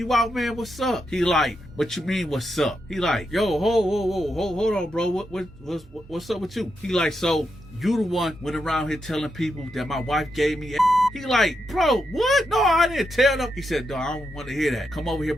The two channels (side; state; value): both; normal; correlation 0.84